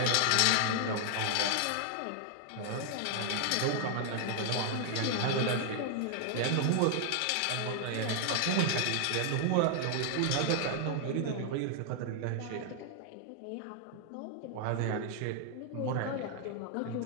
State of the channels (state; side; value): different; both; correlation 0.00